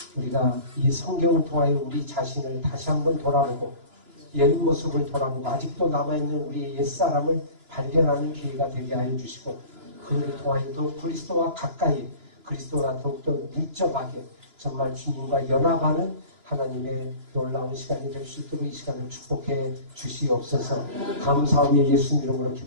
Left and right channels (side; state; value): left; late; 2.9 ms